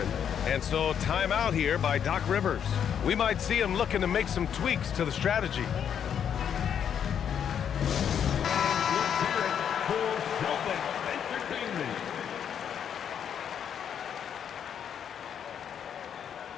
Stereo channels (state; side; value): quieter; right; 8.5 dB